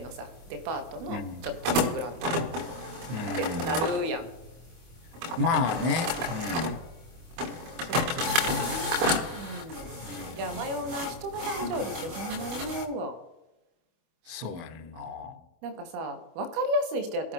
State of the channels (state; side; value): late; left; 24 ms